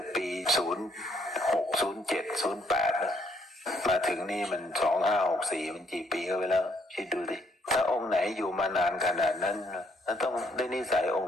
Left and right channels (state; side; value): normal; both; correlation 0.69